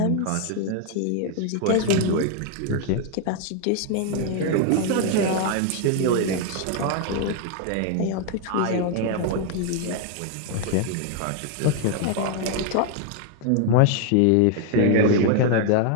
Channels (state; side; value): different; both; correlation 0.00